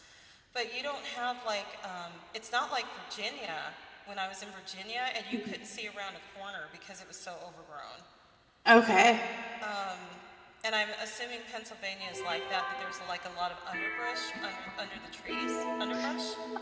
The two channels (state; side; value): identical; both; correlation 1.00